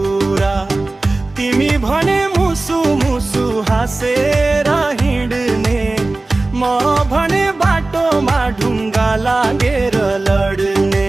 तिमी भने मुसु मुसु हाँसेर हिँड्ने, म भने बाटोमा ढुङ्गा लागेर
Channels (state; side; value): quieter; left; 3.1 dB